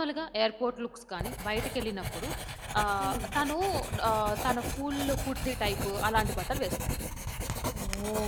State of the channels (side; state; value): both; identical; correlation 1.00